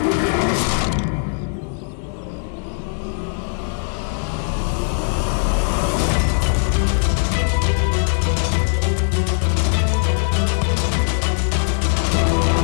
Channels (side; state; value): right; silent; 66 dB below the other